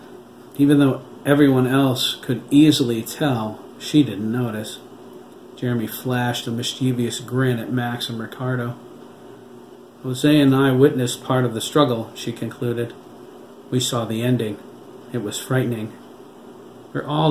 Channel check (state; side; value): identical; both; correlation 1.00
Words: Even though everyone else could easily tell, she didn't notice. Jeremy flashed a mischievous grin at Max and Ricardo. Jose and I witnessed part of the struggle, she concluded. We saw the ending. It was frightening. We're